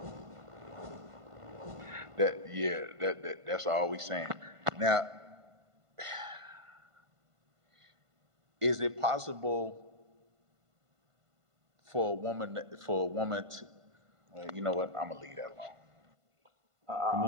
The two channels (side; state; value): left; late; 1.5 ms